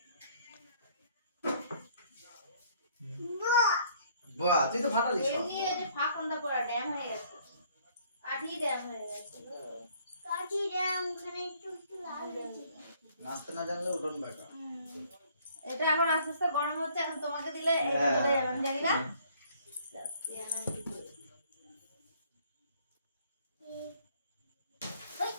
বাহ তুই তো ফাটালি সব এমনি যে ফাঁকন্দা পড়া ড্যাম হয়ে গেছে কাঠি ড্যাম হয়ে গেছে কাঠি ড্যাম ওখানে একটু একটু লাল হয়েছে নাচতে না জানলে উঠোন বেকা এটা এখন আস্তে আস্তে গরম হচ্ছে এখন তোমাকে দিলে এটা চলে যাবে আমি জানি না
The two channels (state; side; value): inverted; both; correlation -0.61